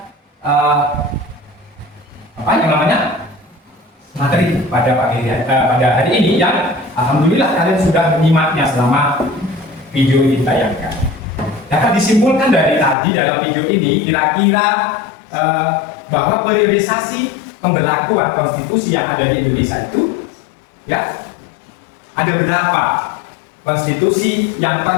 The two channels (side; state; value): right; drops out; at 13.0 s